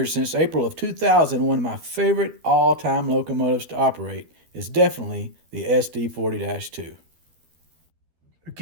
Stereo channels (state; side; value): late; left; 12 ms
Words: since April of 2000, one of my favorite all-time locomotives to operate is definitely the SD40-2.